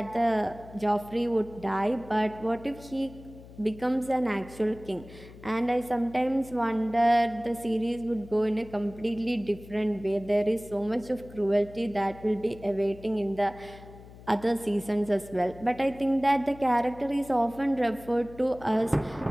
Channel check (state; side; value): noise; left; hum, 18 dB below the sound